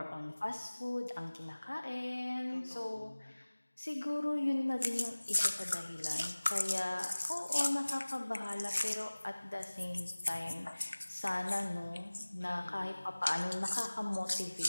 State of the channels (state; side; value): inverted; both; correlation -1.00